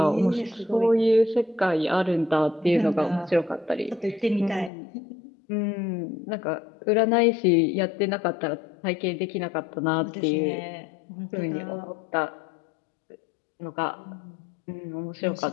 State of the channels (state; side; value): drops out; right; at 4.7 s